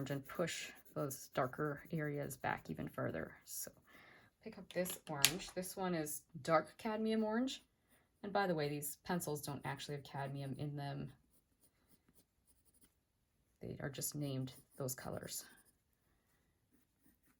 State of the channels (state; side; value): identical; both; correlation 1.00